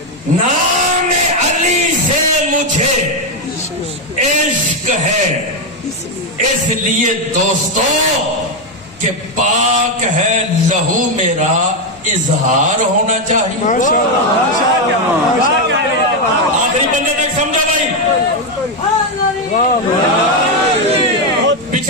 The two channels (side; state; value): both; normal; correlation 0.05